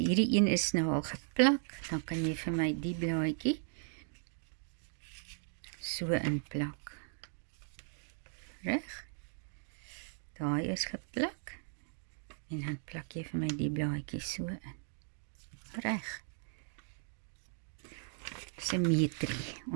een is nou al geplak, dan kan jy vir my die blaadjie so inplak. Reg? Daai is geplak, en dan plak jy vir my die blaadjie so in. Reg. Simmetrie.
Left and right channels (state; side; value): silent; left; digital silence